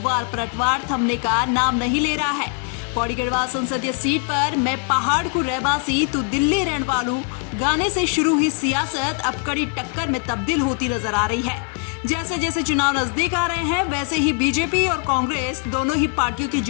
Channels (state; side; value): quieter; right; 37.6 dB